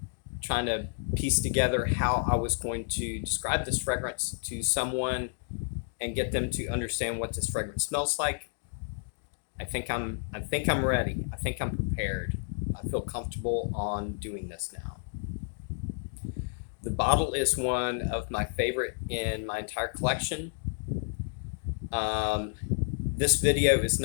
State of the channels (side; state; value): right; silent; digital silence